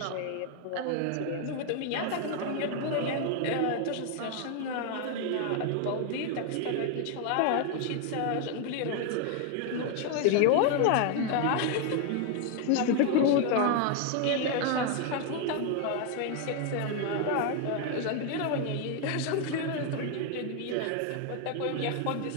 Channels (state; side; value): different; both; correlation 0.01